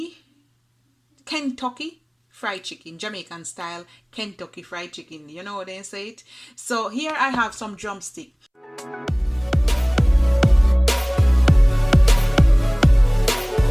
Kentucky fried chicken, Jamaican style Kentucky fried chicken. You know what they say it. So here I have some drumstick.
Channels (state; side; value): identical; both; correlation 1.00